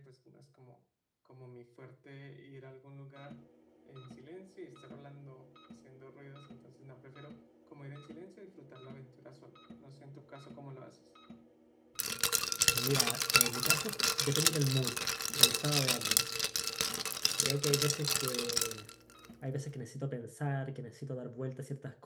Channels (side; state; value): both; identical; correlation 1.00